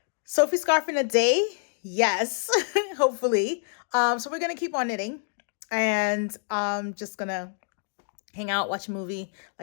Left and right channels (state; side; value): silent; right; digital silence